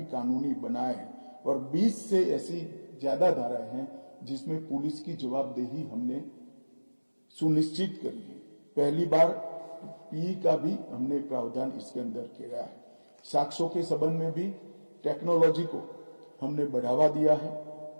कानूनी बनाया है और 20 से ऐसी ज्यादा धाराएं हैं जिसमें पुलिस की जवाबदेही हमने सुनिश्चित करी है। पहली बार पी का भी हमने प्रावधान इसके अंदर किया है। साक्ष्यों के संबंध में भी टेक्नोलॉजी को हमने बढ़ावा दिया है।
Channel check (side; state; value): both; inverted; correlation -1.00